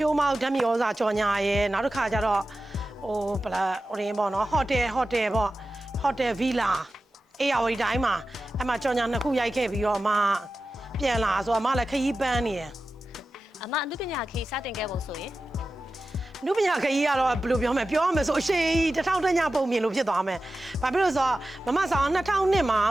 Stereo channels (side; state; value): both; normal; correlation 0.94